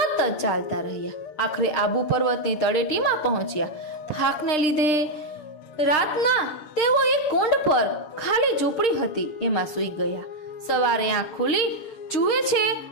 ચાલતા રહ્યા. આખરે આબુ પર્વતની તળેટીમાં પહોંચ્યા. થાકને લીધે રાતના તેઓ એક કુંડ પર ખાલી ઝૂંપડી હતી એમાં સૂઈ ગયા. સવારે આંખ ખુલી જુએ છે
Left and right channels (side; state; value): right; late; 6.5 ms